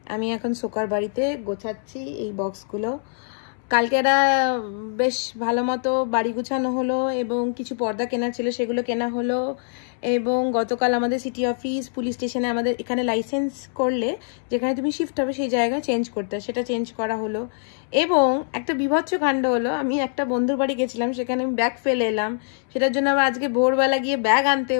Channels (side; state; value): right; silent; 62 dB below the other